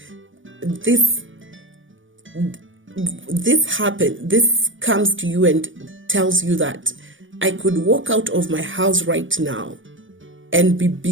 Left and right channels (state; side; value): late; left; 0.56 ms